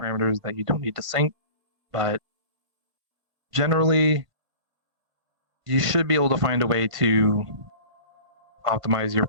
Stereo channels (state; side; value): late; left; 1.8 ms